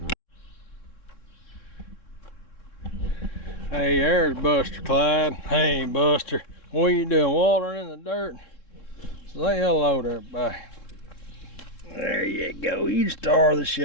Hey, there's Buster Clyde. Hey, Buster, what are you doing? Watering in the dirt? Say hello to everybody. There you go. You the star of the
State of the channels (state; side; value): late; right; 3.7 ms